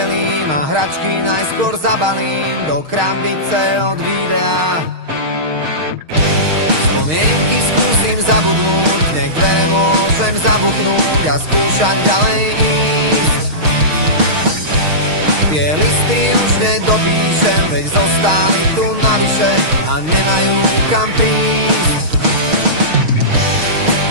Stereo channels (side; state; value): left; late; 6.4 ms